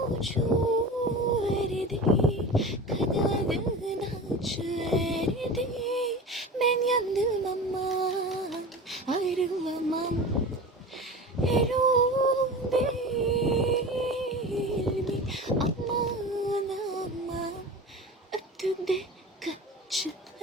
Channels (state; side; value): normal; both; correlation 0.32